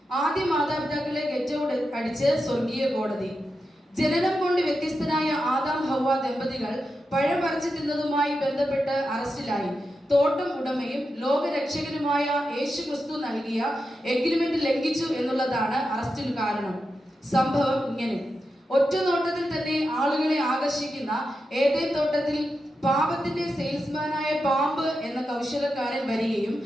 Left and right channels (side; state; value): both; normal; correlation 0.89